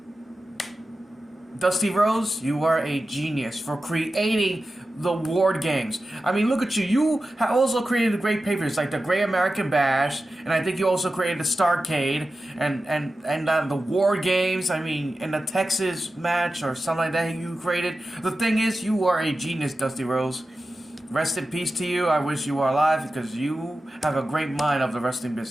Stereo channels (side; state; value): both; normal; correlation 0.93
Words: Dusty Rhodes, you are a genius for creating the Ward Games. I mean, look at you. You have also created great pay-per-views like the Great American Bash, and I think you also created the Starrcade and the Ward Games. I mean, in the Texas match or something like that you created. The thing is, you are a genius, Dusty Rhodes. Rest in peace to you. I wish you were alive because you have a great mind of the wrestling